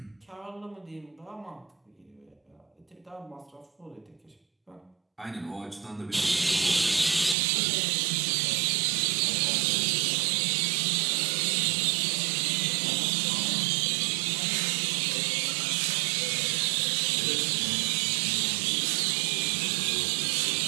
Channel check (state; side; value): drops out; left; at 7.4 s